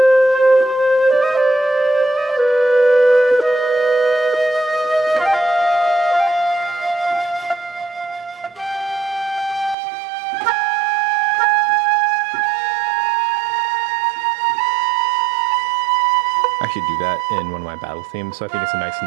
I should do that in one of my battle themes, so I think it's a nice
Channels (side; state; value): left; drops out; at 9.8 s